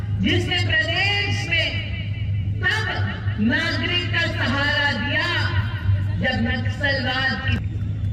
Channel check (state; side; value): identical; both; correlation 1.00